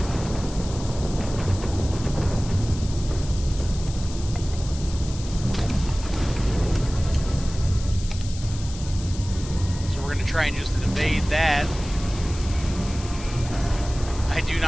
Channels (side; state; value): left; noise; hiss, 14 dB below the sound